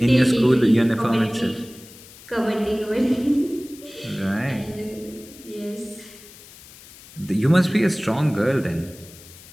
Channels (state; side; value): noise; left; hiss, 20 dB below the sound